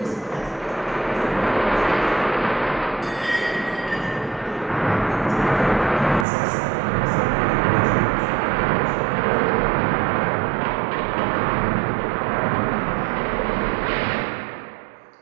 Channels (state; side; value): drops out; left; at 6.2 s